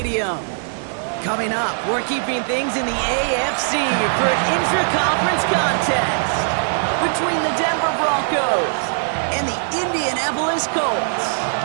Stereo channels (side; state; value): left; silent; 66 dB below the other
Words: Coming up, we're keeping things in the AFC for an intra-conference contest between the Denver Broncos and the Indianapolis Colts.